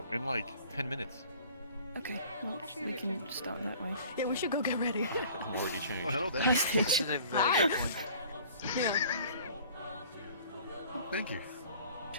in like 10 minutes. Okay. Well, we can start that way. Yeah, we should go get ready. I'm already changed. Oh, hello there. Hi, Stitch. Yeah. Thank you.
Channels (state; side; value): inverted; both; correlation -0.49